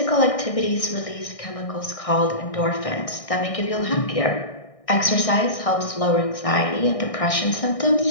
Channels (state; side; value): late; right; 1.6 ms